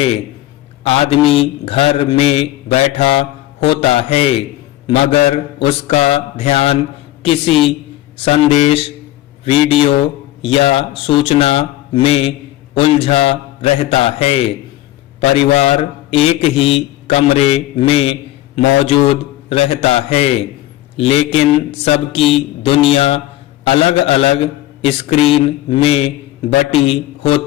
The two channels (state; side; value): quieter; right; 15.5 dB